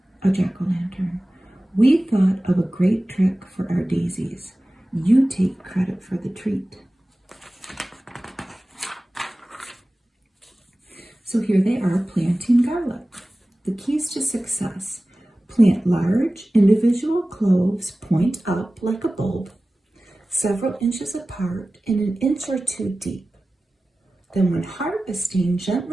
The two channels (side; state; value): both; normal; correlation 0.97